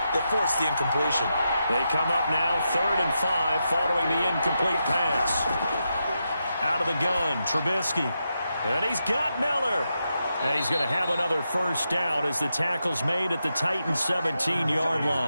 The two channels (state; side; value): inverted; both; correlation -0.86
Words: that forced the incompletion. They come up now, 3rd and 5, following the incomplete pass. Out of the gun, Trubisky. And he's got Miller. And he's going to have another first down as the tackle's made at the Titans' 17-yard